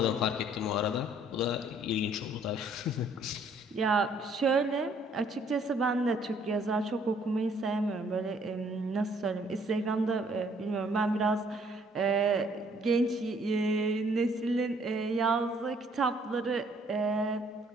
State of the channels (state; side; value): normal; both; correlation 0.63